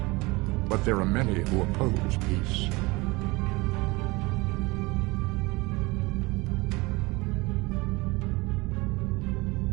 but there are many who oppose peace.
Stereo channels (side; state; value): left; quieter; 23.6 dB